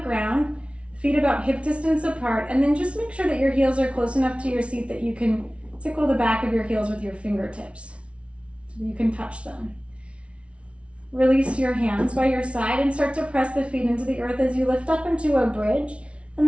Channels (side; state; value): left; late; 0.061 ms